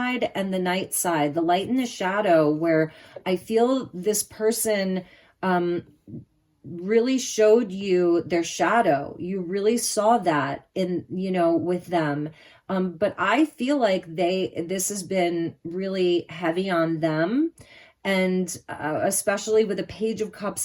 and the night side, the light and the shadow, where I feel this person really showed you their shadow. You really saw that in, with them. But I feel like this has been really heavy on them. And especially with a Page of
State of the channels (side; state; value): both; identical; correlation 1.00